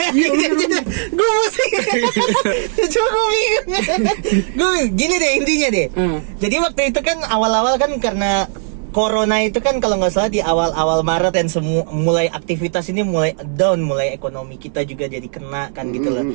gue mesti. Cuma gue bingung. Gini deh intinya deh. Jadi waktu itu kan awal-awal kan karena Corona itu kan kalau nggak salah di awal-awal Maret dan mulai aktivitas ini mulai down, mulai ekonomi kita juga jadi kena kan gitu loh.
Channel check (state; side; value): silent; left; digital silence